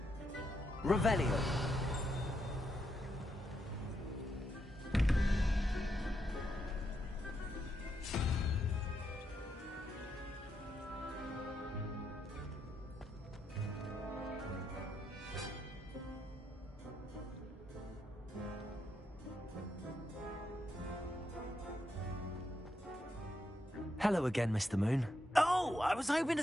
Revelio. Hello again, Mr. Moon. Oh, I was hoping to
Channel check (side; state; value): both; normal; correlation 0.81